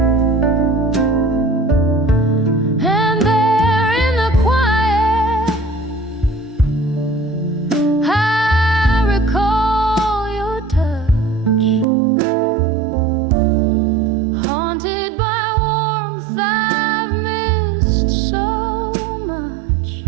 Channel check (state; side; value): drops out; left; at 11.9 s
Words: And there in the quiet, I recall your touch, haunted by warmth I've missed so much.